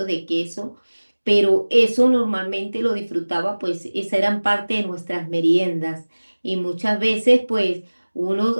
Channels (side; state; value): both; inverted; correlation -1.00